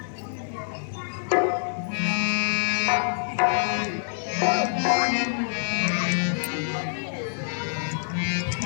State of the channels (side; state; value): right; silent; digital silence